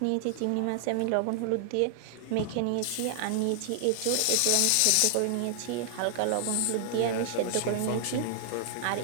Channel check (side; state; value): both; different; correlation 0.00